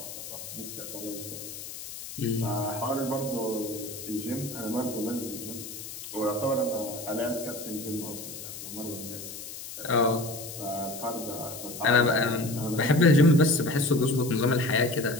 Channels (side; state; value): left; noise; hiss, 11 dB below the sound